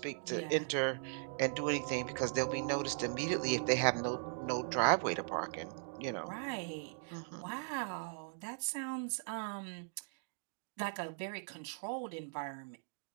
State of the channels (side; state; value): left; silent; digital silence